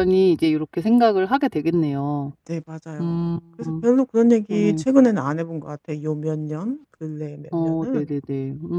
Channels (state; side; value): identical; both; correlation 1.00